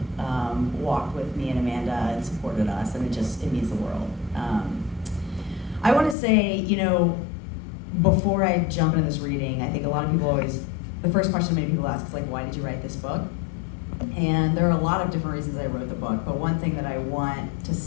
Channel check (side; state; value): right; drops out; at 6.2 s